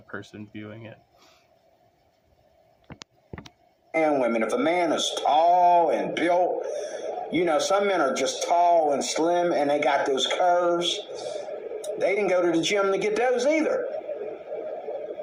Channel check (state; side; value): identical; both; correlation 1.00